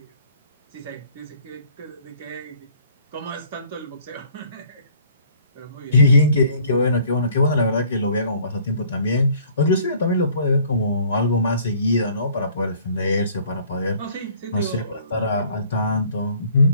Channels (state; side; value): inverted; both; correlation -0.56